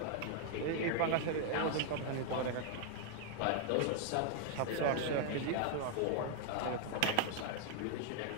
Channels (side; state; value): both; different; correlation 0.00